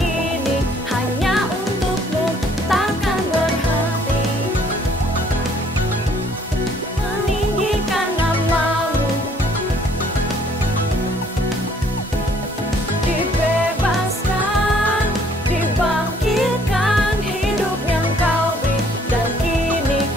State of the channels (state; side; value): normal; both; correlation 0.61